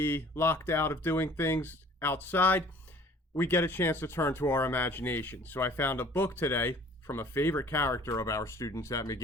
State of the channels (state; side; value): normal; both; correlation 0.51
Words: locked out of doing things outside, we get a chance to turn to our imagination. So I found a book today from a favorite character of our students at